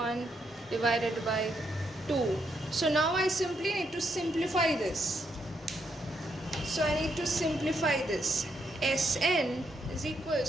divided by 2. So now I simply need to simplify this. So I need to simplify this. Sn is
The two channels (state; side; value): normal; both; correlation 0.78